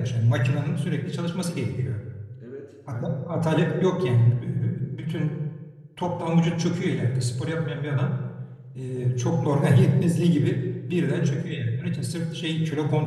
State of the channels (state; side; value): identical; both; correlation 1.00